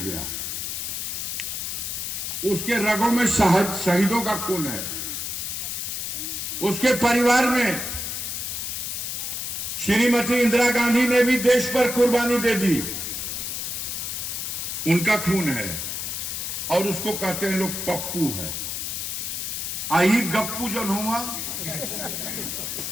गया। उसके रगों में शहीदों का खून है। उसके परिवार में श्रीमती इंदिरा गांधी ने भी देश पर कुर्बानी दे दी। उनका खून है और उसको कहते हैं लोग पप्पू है। आई गप्पू जो हुआ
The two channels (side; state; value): left; noise; hiss, 4 dB below the sound